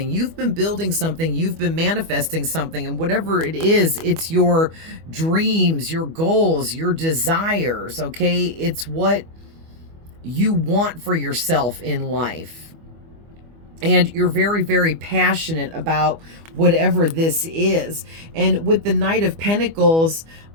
you've been building something, you've been manifesting something, and whatever it is, it's your dreams, your goals, your desires, okay? It's what you want for yourself in life. And you're very, very passionate about whatever this is. And with the Knight of Pentacles,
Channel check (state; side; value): late; left; 25 ms